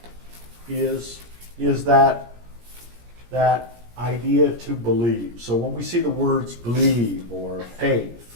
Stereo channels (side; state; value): left; late; 17 ms